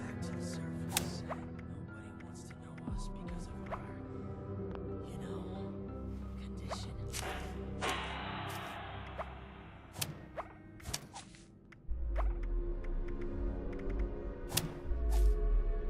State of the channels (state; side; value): identical; both; correlation 1.00